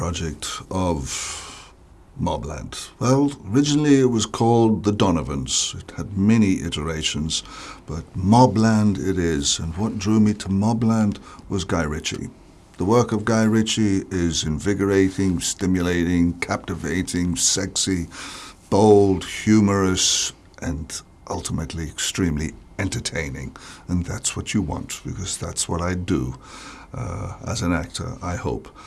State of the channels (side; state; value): both; identical; correlation 1.00